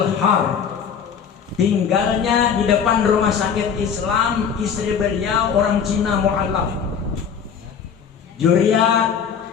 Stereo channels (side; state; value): right; quieter; 7.1 dB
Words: Tinggalnya di depan rumah sakit Islam. Istri beliau orang Cina mu'alaf. Juriat